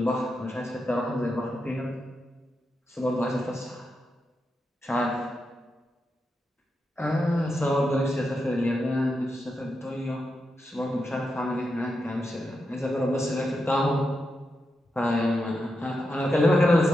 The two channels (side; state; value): both; normal; correlation 0.86